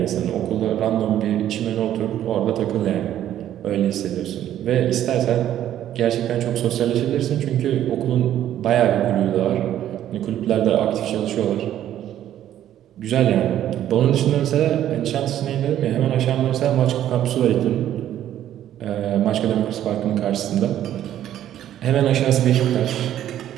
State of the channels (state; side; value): quieter; left; 11.6 dB